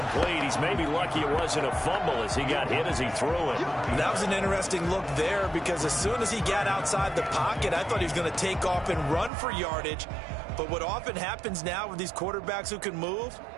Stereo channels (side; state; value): left; drops out; at 9.3 s